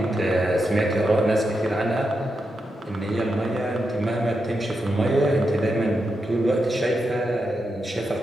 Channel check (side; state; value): both; normal; correlation 0.86